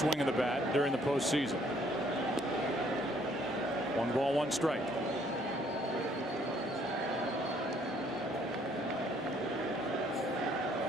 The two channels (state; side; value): normal; both; correlation 0.64